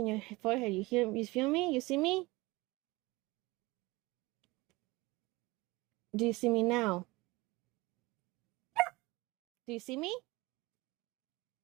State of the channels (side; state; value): left; quieter; 22.3 dB